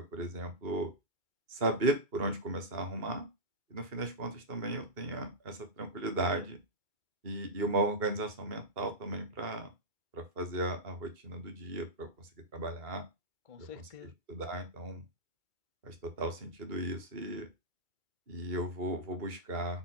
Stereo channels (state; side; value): late; left; 2.3 ms